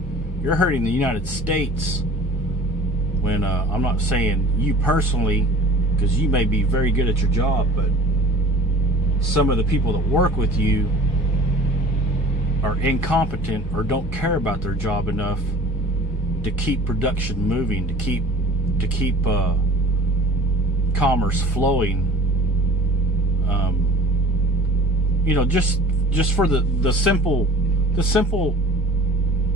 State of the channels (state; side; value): normal; both; correlation 0.45